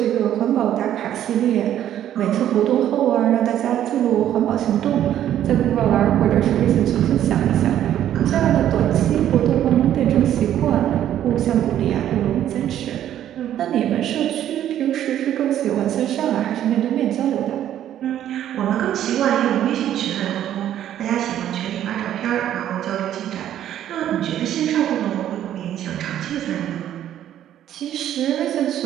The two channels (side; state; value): left; quieter; 11.3 dB